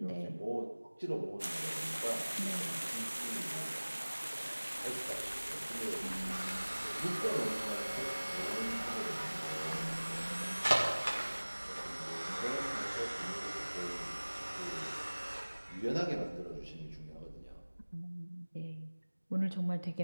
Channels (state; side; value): inverted; both; correlation -1.00